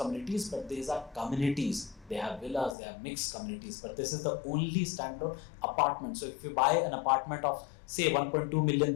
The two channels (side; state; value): right; drops out; at 2.8 s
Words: but these are communities. They have villas, they have mixed communities, but this is the only standalone apartment. So if you buy an apartment of say 1.2 million